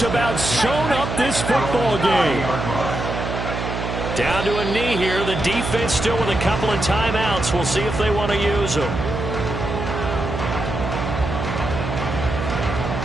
about sewn up this football game. Down to a knee here. The defense still with a couple of timeouts. We'll see if they want to use them.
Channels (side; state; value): right; noise; hum, 4 dB below the sound